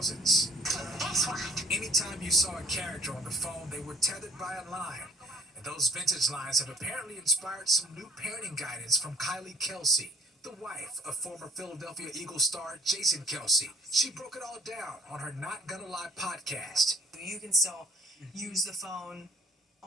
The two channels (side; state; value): both; normal; correlation 0.56